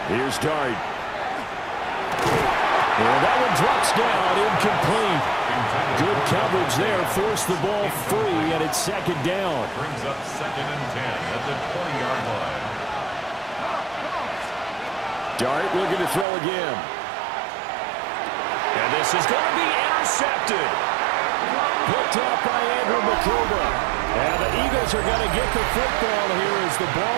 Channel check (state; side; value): drops out; left; at 16.2 s